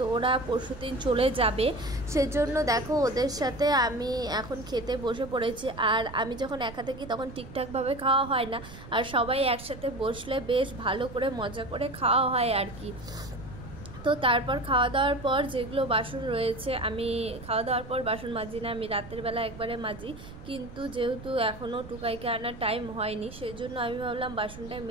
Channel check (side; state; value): right; noise; rumble, 15 dB below the sound